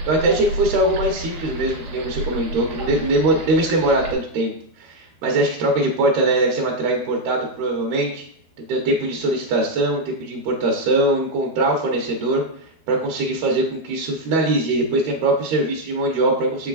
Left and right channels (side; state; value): left; late; 12 ms